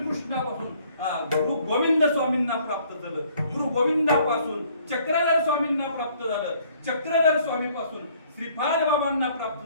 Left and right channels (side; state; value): both; inverted; correlation -0.61